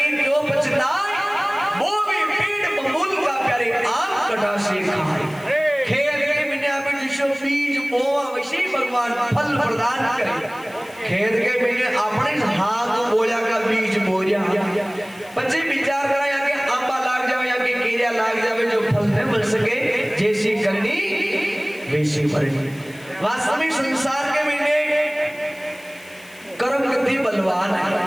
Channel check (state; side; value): noise; left; hiss, 24 dB below the sound